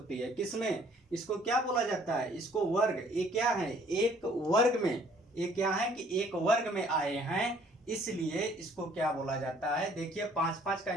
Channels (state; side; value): normal; both; correlation 0.59